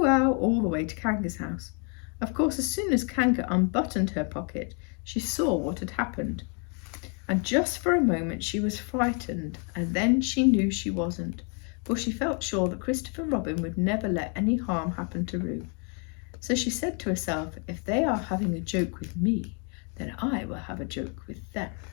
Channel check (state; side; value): quieter; right; 38.5 dB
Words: ow, all the way to Kanga's house. Of course, as soon as Kanga unbuttoned her pocket, she saw what had happened. And just for a moment she was frightened, and then she knew she wasn't, for she felt sure that Christopher Robin would never let any harm happen to Roo. So she said to herself, if they are having a joke with me, then I will have a joke with them.